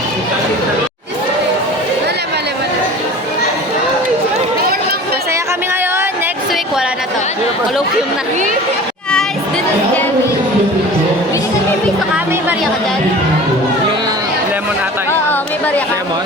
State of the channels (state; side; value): normal; both; correlation 0.40